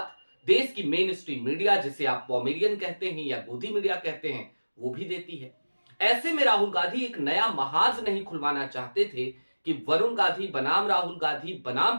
देश की मेन स्ट्रीम मीडिया, जिसे आप पॉमेरियन कहते हैं या गोदी मीडिया कहते हैं, वो भी देती है। ऐसे में राहुल गांधी एक नया महाज नहीं खुलवाना चाहते थे कि वरुण गांधी बनाम राहुल गांधी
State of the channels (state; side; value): inverted; both; correlation -1.00